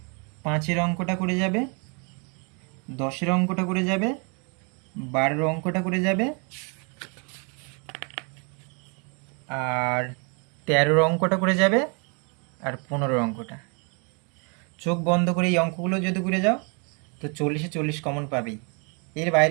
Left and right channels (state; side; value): quieter; left; 35.4 dB